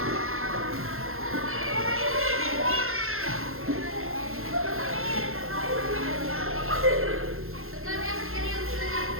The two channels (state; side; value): late; left; 0.61 ms